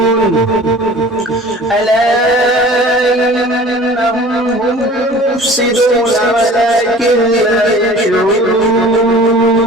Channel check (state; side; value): normal; both; correlation 0.45